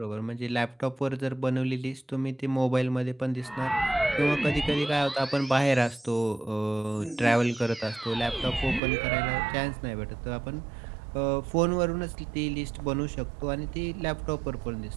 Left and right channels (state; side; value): drops out; left; at 8.8 s